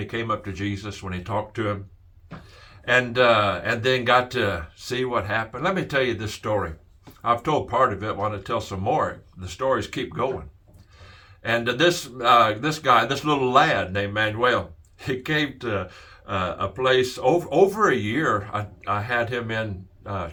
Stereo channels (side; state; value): both; identical; correlation 1.00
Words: came up to Jesus, when he talked to him, and then got to see what happened? Let me tell you this story. I've told part of it. I want to tell some more. The stories keep going. And this guy, this little lad named Manuel, he came to a place over a year. I had him in